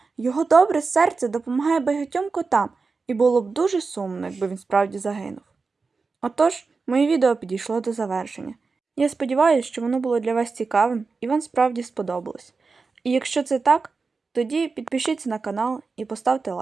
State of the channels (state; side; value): quieter; left; 4.4 dB